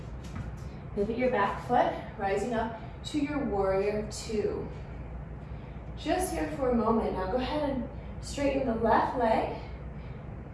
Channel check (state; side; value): identical; both; correlation 1.00